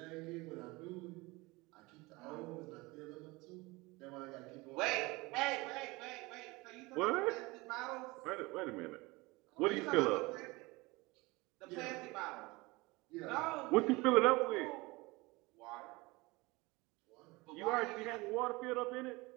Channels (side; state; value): left; quieter; 23.3 dB